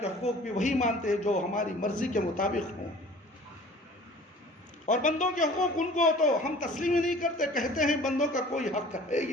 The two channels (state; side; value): normal; both; correlation 0.47